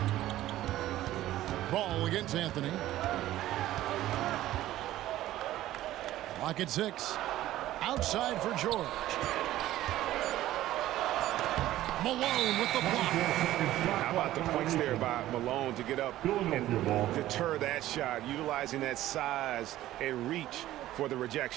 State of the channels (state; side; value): quieter; left; 14.5 dB